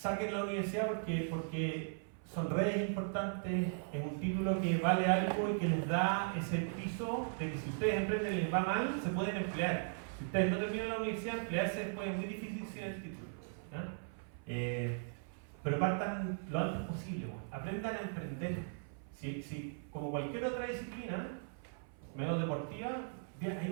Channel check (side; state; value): left; silent; 52 dB below the other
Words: la universidad porque son redes importantes, es un título que vale algo y que les da ese piso de que si ustedes emprenden y les va mal, se pueden emplear. Si ustedes no terminan la universidad, emplearse después es muy difícil sin el título. Pero partan lo antes posible, aprendan a emprender. Si como cualquier otra disciplina, medio deportiva,